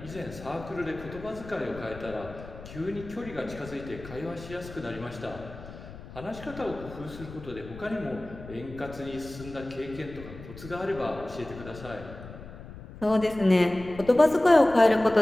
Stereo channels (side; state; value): left; noise; rumble, 15 dB below the sound